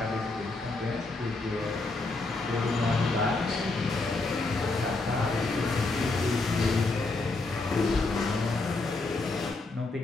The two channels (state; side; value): quieter; right; 3.4 dB